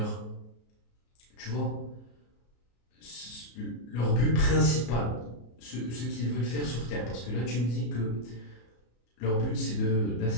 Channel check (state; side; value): late; right; 34 ms